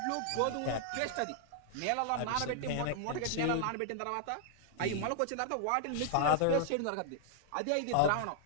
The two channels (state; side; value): different; both; correlation -0.01